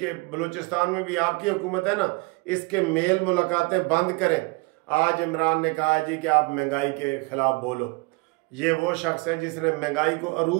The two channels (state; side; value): quieter; left; 27.3 dB